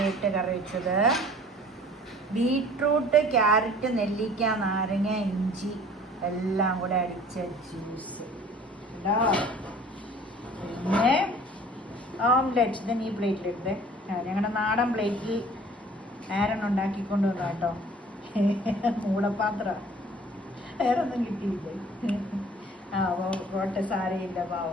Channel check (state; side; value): normal; both; correlation 0.50